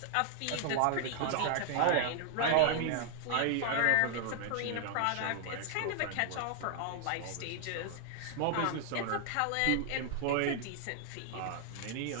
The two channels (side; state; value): both; different; correlation 0.00